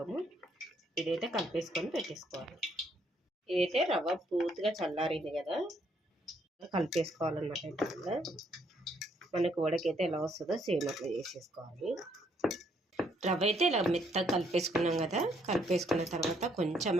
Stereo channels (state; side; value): normal; both; correlation 0.70